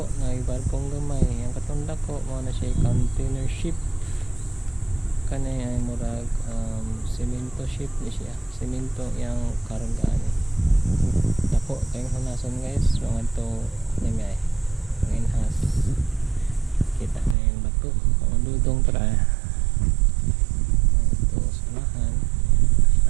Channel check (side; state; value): left; drops out; at 17.4 s